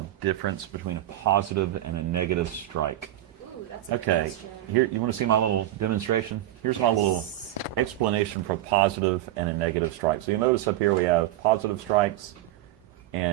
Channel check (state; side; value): quieter; left; 14.0 dB